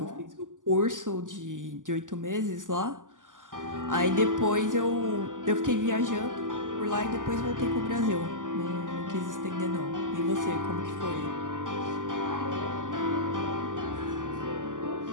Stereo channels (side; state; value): left; late; 0.88 ms